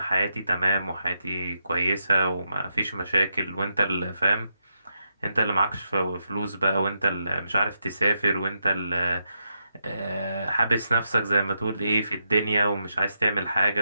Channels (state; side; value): inverted; both; correlation -0.83